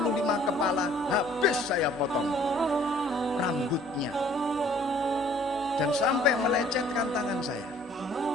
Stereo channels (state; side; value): normal; both; correlation 0.56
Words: kepala habis saya potong rambutnya dan sampai melecetkan tangan saya.